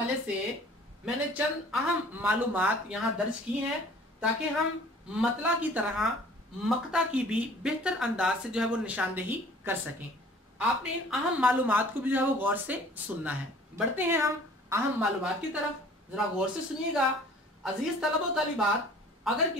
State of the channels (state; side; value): normal; both; correlation 0.50